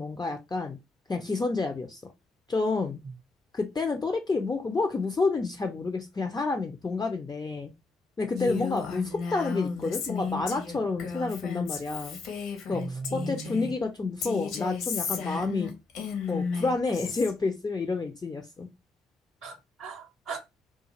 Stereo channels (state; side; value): quieter; right; 3.4 dB